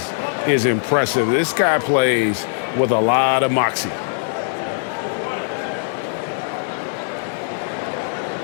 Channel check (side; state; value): right; silent; digital silence